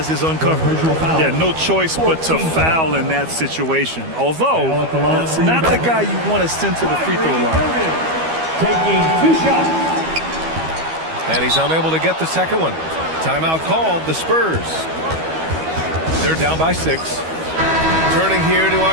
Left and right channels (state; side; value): late; left; 12 ms